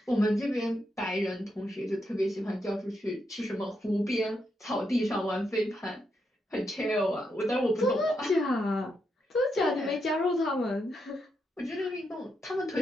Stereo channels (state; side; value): normal; both; correlation 0.82